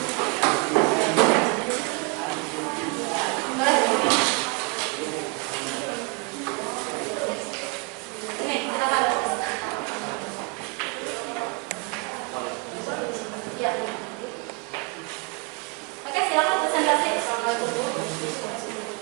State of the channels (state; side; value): quieter; left; 30.5 dB